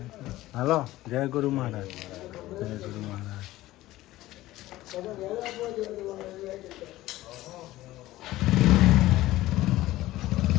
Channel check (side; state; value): right; quieter; 16.5 dB